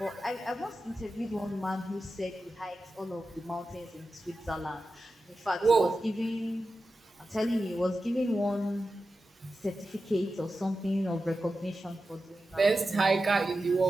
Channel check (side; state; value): both; normal; correlation 0.92